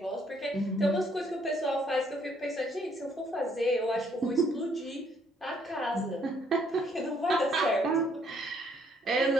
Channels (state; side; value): normal; both; correlation 0.67